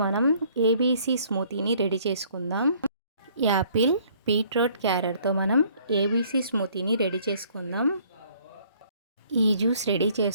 మనం ABC స్మూతీని ready చేసుకుందాం. యాపిల్, బీట్రూట్, క్యారెట్తో మనం ఏబీసీ స్మూతీని రెడీ చేసుకుందాం. ఈ జ్యూస్ రెడీ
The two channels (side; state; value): both; inverted; correlation -0.60